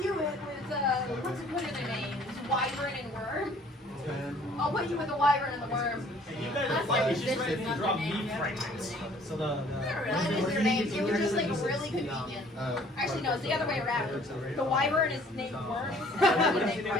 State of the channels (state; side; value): normal; both; correlation 0.56